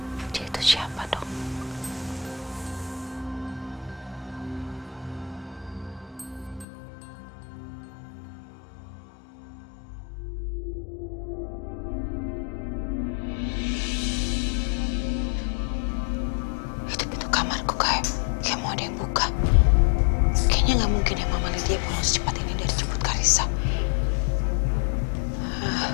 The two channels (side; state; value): right; drops out; at 6.7 s